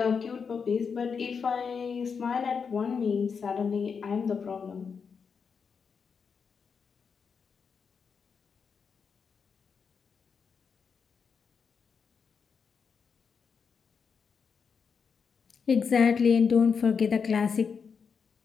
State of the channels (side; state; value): right; quieter; 6.0 dB